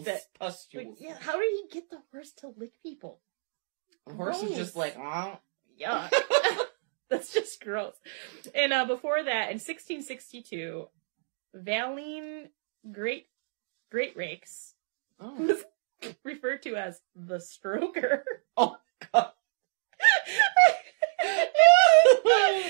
Pustules. Yeah, how did he get the horse to lick people? The horse is just like, yeah. That's just gross. And before that, in 1662, Valine Great Rakes was referred to as the Stroker. Oh, God.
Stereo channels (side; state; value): left; silent; digital silence